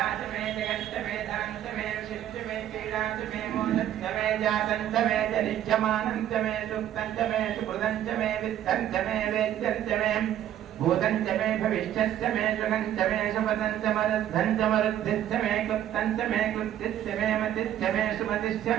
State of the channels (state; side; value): quieter; left; 11.4 dB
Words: च मे जगं च मे धनं च मे विशिष्ट मे पीडा च मे मोदं च मे जातं च मे जनिज्यमानं च मे सुक्तं च मे सुकृतं च मे वित्तं च मे वेद्यं च मे भूतं च मे भविष्यश्च मे सुगं च मे सुपदं च मरुद्धं च मरुद्धिश्च मे क्लुप्तं च मे क्लुप्तिश्च मे मतिश्च मे सुमतिश्च